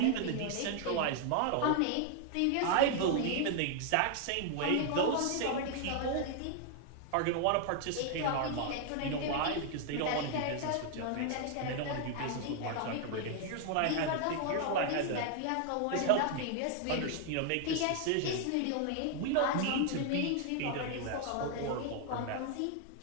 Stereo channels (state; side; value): different; both; correlation 0.00